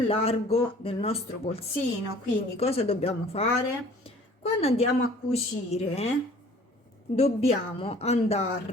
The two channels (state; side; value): normal; both; correlation 0.51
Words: del nostro polsino, quindi cosa dobbiamo fare? Quando andiamo a cucire dobbiamo